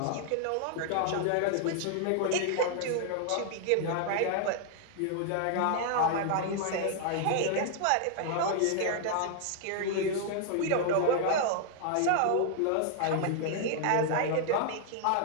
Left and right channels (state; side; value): different; both; correlation 0.00